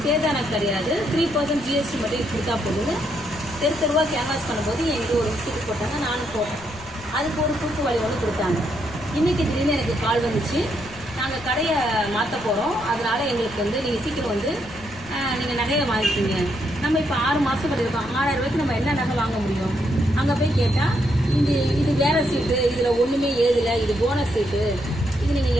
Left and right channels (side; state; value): left; noise; rumble, 19 dB below the sound